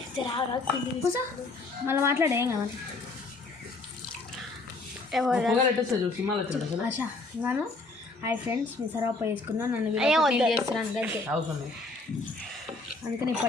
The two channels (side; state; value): right; quieter; 3.3 dB